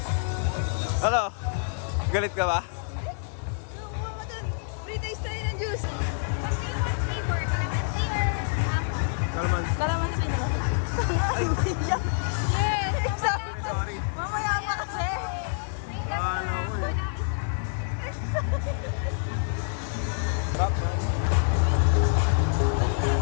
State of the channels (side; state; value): right; silent; 57 dB below the other